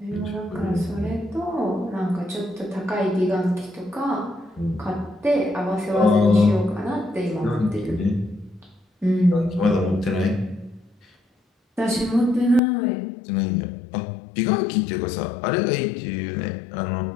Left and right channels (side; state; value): right; drops out; at 12.6 s